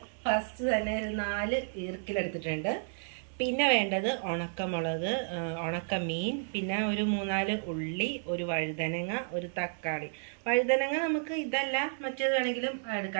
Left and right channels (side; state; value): left; silent; 57 dB below the other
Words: ഫസ്റ്റ് തന്നെ ഒരു 4 ഈർക്കിലെടുത്തിട്ടുണ്ട്. പിന്നെ വേണ്ടത് ഉണക്കമുളക്, ഉണക്കമീൻ, പിന്നെ ഒരു 3-4 ഉള്ളി, ഒരു വഴുതനങ്ങ, ഒരു തക്കാളി. വഴുതനങ്ങ നമുക്ക് ഇതല്ല മറ്റേത് വേണമെങ്കിലും